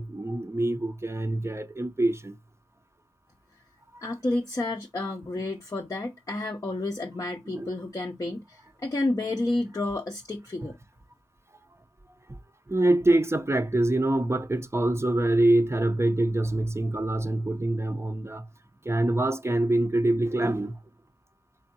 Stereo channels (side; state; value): both; normal; correlation 0.91